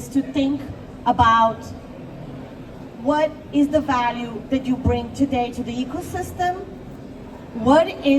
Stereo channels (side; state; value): both; identical; correlation 1.00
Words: to think about what is the value that you bring today to the ecosystem? What